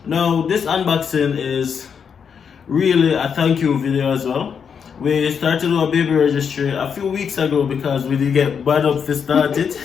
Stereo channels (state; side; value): quieter; right; 6.9 dB